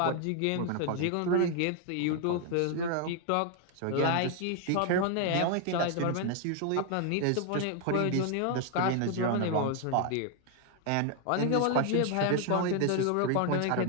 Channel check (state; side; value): different; both; correlation 0.00